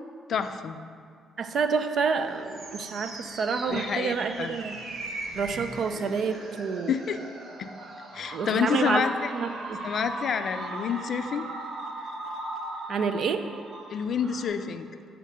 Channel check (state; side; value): normal; both; correlation 0.66